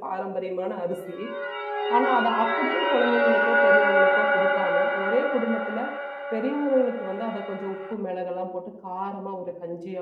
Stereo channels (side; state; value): both; identical; correlation 1.00